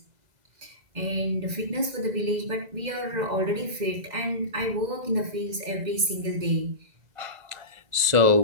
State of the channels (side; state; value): left; late; 2.0 ms